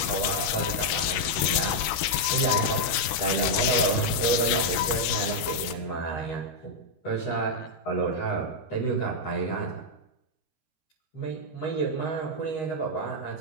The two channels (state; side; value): late; right; 13 ms